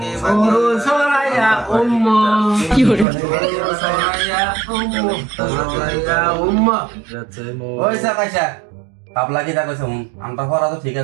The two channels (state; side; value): drops out; left; at 3.1 s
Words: বাঁকে। সরু সরাইয়া উম্মা কি হরে সরাইয়া উম্মা গাছের মৌ। ওই সা পয়সা হাবলা কি তা কইছে হুন, আমটা পড়া তো ঠিক